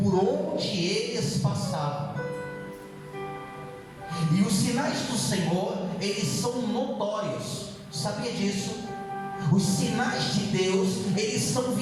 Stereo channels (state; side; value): identical; both; correlation 1.00